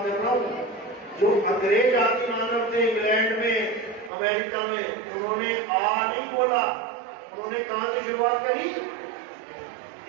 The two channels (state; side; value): drops out; left; at 4.1 s